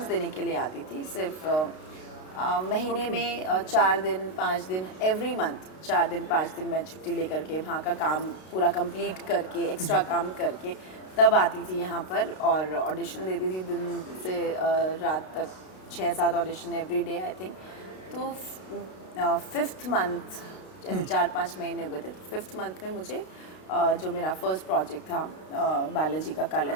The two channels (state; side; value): late; right; 32 ms